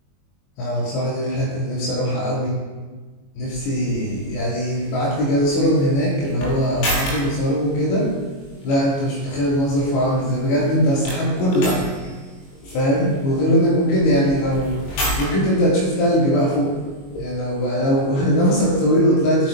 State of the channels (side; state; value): right; late; 22 ms